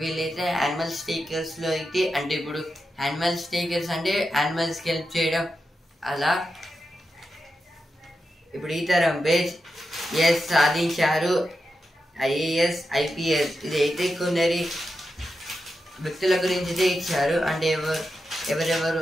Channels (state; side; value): normal; both; correlation 0.88